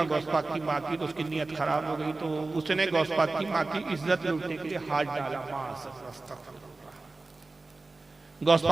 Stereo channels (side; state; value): left; quieter; 3.4 dB